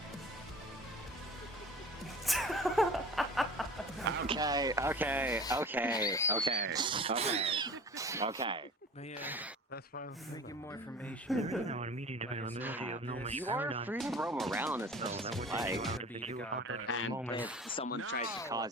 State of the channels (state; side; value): normal; both; correlation 0.41